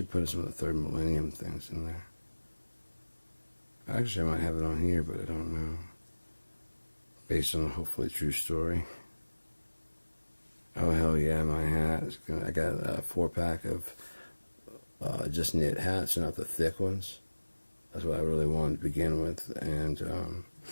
put some of the Third Millennium things in there. Actually, I might have it on here, but I don't know. Based on a hopefully true story. Oh, hell yeah, my hat. I got a 4-pack of just knit hats, not the thick ones. That's what I really wanted to begin with. And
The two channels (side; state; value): both; inverted; correlation -1.00